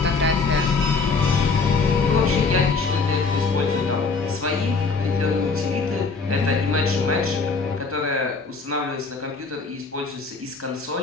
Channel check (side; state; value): right; quieter; 4.3 dB